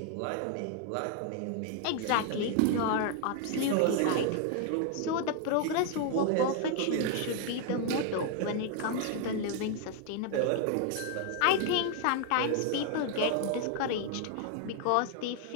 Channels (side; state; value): both; different; correlation 0.00